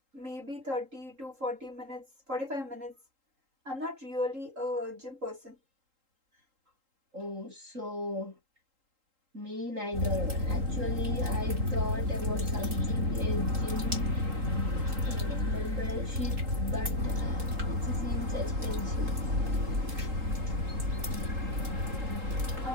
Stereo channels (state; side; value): late; left; 3.8 ms